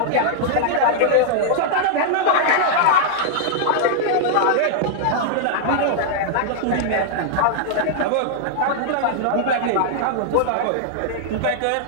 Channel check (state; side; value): different; both; correlation -0.01